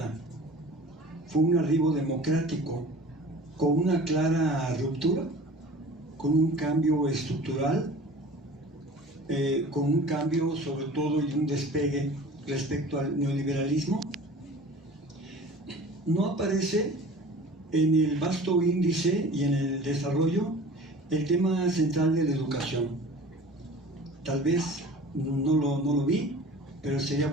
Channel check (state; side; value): normal; both; correlation 0.42